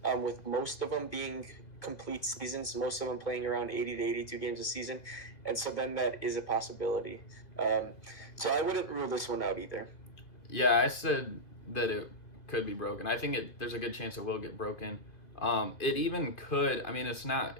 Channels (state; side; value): late; right; 2.6 ms